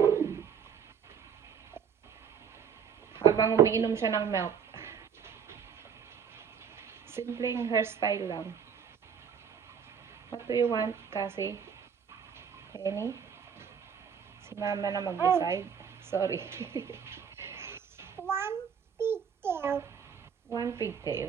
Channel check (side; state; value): left; quieter; 7.3 dB